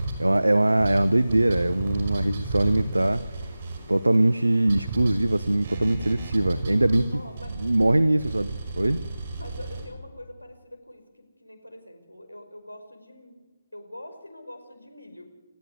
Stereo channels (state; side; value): inverted; both; correlation -0.97